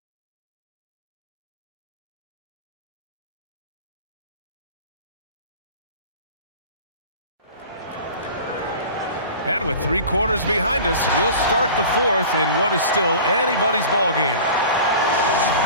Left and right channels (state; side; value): inverted; both; correlation -0.39